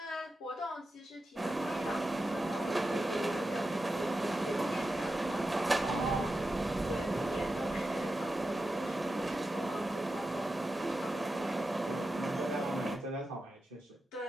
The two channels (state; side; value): normal; both; correlation 0.91